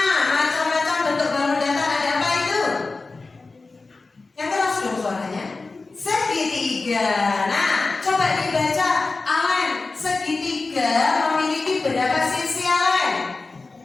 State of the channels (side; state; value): right; quieter; 3.7 dB